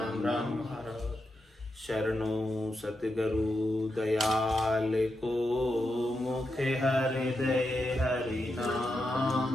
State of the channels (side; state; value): both; normal; correlation 0.86